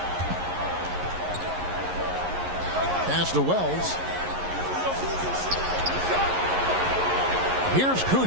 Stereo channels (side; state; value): left; late; 11 ms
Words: Pass to Wells. Here's